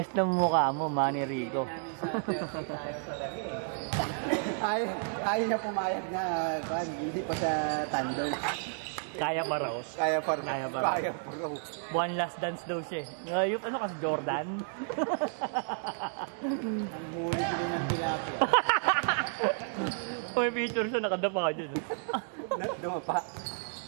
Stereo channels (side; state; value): left; silent; digital silence